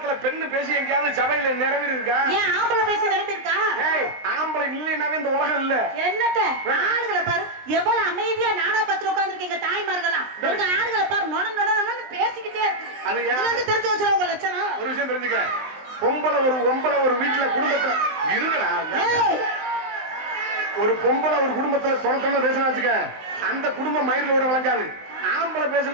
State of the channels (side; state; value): left; late; 19 ms